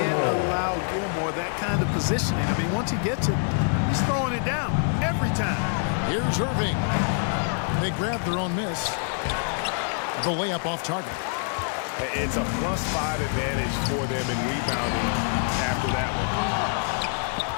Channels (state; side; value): silent; right; 61 dB below the other